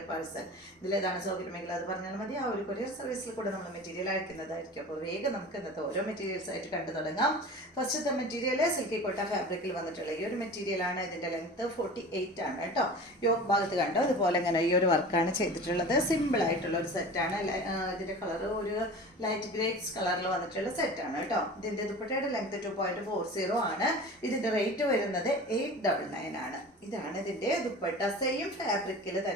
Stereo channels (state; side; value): normal; both; correlation 0.36